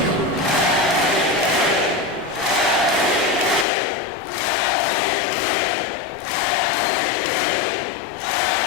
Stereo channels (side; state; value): right; drops out; at 3.7 s